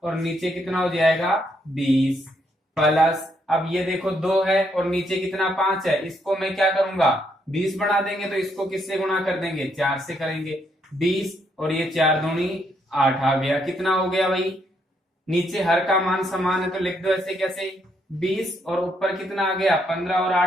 और नीचे कितना हो जाएगा 20 प्लस। अब ये देखो 2 है और नीचे कितना 5 है। इसको मैं क्या करूंगा 20 बना देंगे तो इसको किससे गुणा कर देंगे, 4 से करेंगे। 20 और ये 4 दूनी 8 आ गया। कितना हो गया भाई, नीचे हर का मान समान है तो लिख दो ऐसे कैसे 20 और ऊपर कितना आ गया 15 और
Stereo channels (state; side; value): normal; both; correlation 0.74